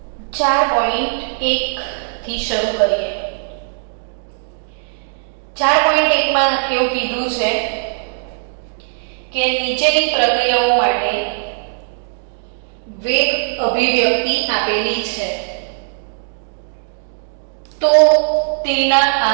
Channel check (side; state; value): left; silent; digital silence